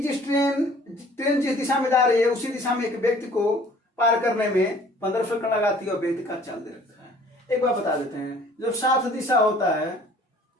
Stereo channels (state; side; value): normal; both; correlation 0.53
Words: ट्रेन जिस दिशा में जा रही है उसी दिशा में एक व्यक्ति को पार करने में 15 सेकंड लगाती है और व्यक्ति का चाल दे रखा है। एक बार बता देते हैं, जब साथ दिशा होता है,